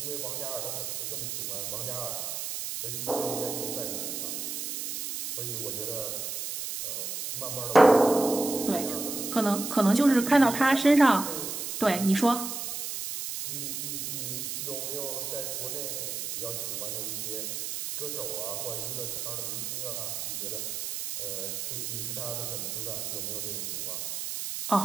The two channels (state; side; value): noise; right; hiss, 4 dB below the sound